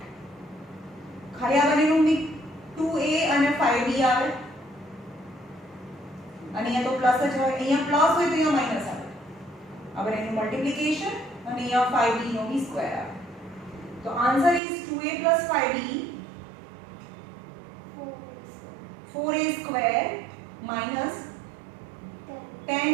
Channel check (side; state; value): left; drops out; at 14.6 s